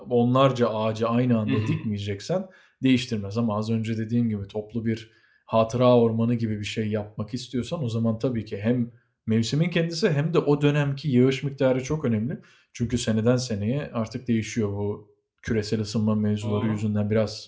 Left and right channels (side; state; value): both; identical; correlation 1.00